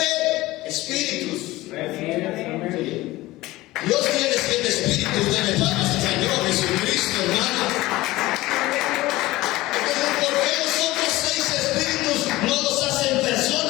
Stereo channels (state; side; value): quieter; right; 18.4 dB